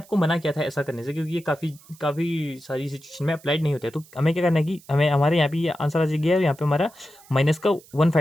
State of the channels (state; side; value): noise; right; hiss, 25 dB below the sound